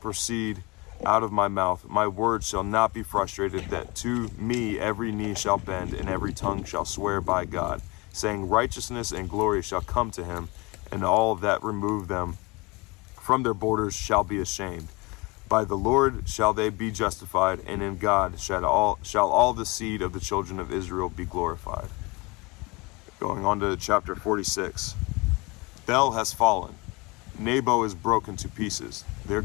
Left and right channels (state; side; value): quieter; right; 25.6 dB